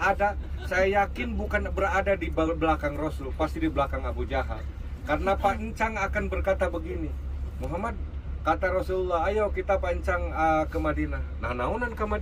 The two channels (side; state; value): both; identical; correlation 1.00